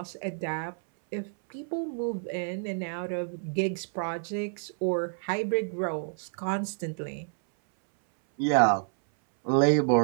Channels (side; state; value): left; silent; 59 dB below the other